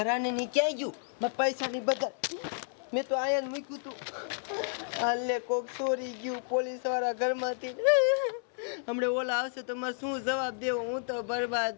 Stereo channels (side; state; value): right; silent; 57 dB below the other